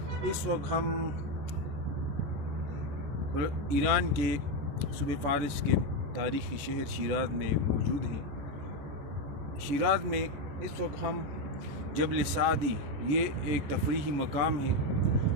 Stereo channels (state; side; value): late; left; 14 ms